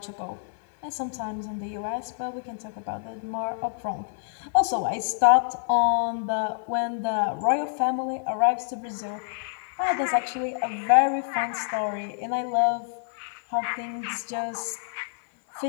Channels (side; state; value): right; silent; digital silence